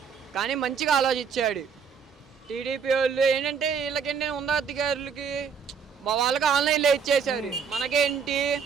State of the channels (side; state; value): left; quieter; 6.4 dB